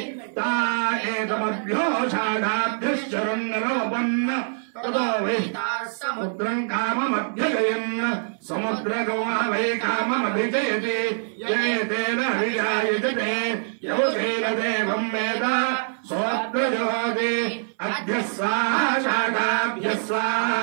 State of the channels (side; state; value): left; silent; 59 dB below the other